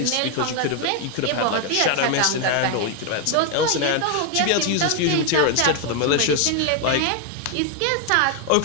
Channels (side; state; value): both; different; correlation 0.01